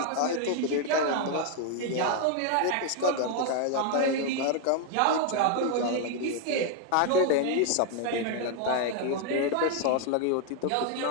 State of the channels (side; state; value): both; different; correlation 0.00